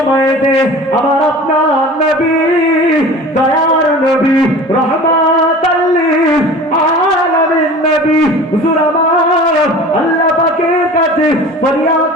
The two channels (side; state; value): both; normal; correlation 0.40